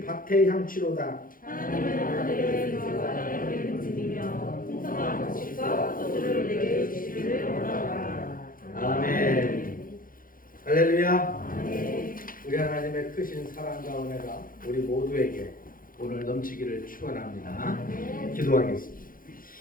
밭의 향취로다. 하나님은 하늘의 빛과 땅의 빛이며 풍성한 곡식과 포도주를 내게 주시기를 원하노라. 아멘. 할렐루야. 아멘. 우리 하나님의 크신 사랑과 은혜가 우리 모두에게 오늘 넘치기를 축원합니다. 기도하겠습니다.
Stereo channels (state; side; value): late; right; 0.40 ms